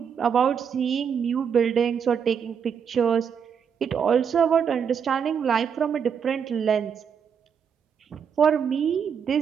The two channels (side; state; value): left; quieter; 7.2 dB